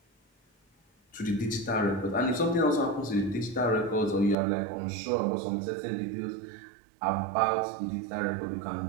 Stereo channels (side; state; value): left; drops out; at 4.4 s